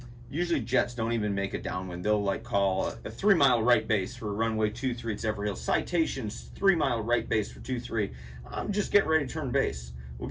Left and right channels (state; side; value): identical; both; correlation 1.00